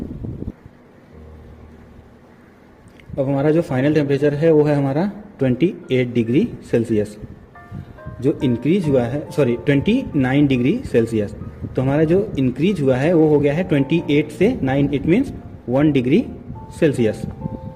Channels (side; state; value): both; identical; correlation 1.00